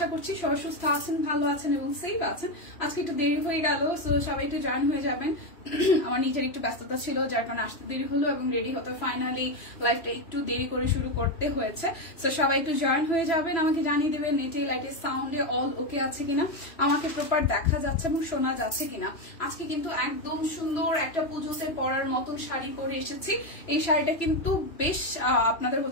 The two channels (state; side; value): late; right; 3.0 ms